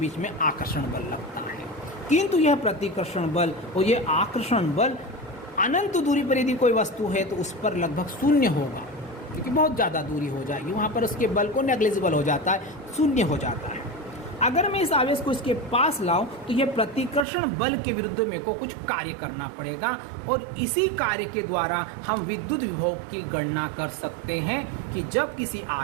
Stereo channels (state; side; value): drops out; left; at 17.2 s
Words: में आकर्षण बल लगता है। किंतु यह प्रतिकर्षण बल और यह आकर्षण बल अनंत दूरी पर यदि कोई वस्तु है तो उस पर लगभग शून्य होगा, क्योंकि बहुत ज़्यादा दूरी हो जाएगी, वहाँ पर उसके बल को नेग्लिजिबल हो जाता है, शून्य हो जाता है। अगर मैं इस आवेश को इसके पास लाऊं तो यह प्रतिकर्षण बल के विरुद्ध मेरे को कुछ कार्य करना पड़ेगा, और इसी कार्य के द्वारा हम विद्युत विभव की गणना कर सकते हैं कि जब किसी